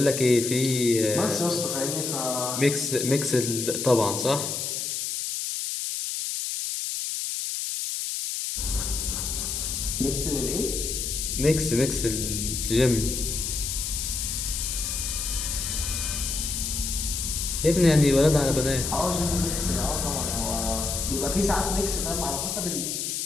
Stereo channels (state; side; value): noise; left; hiss, 2 dB below the sound